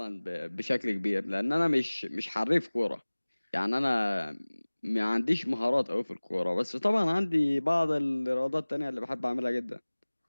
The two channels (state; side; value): inverted; both; correlation -1.00